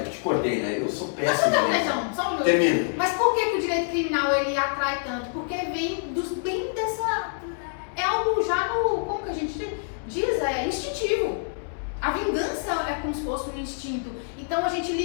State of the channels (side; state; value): right; silent; 61 dB below the other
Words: te cortei, né? Eu sou péssimo. Só um Termina. Mas por que o direito criminal ele atrai tanto? Porque vem bem dessa... É algo já como que a gente diz? É instintivo. A vingança é como se fosse um instinto. Então a gente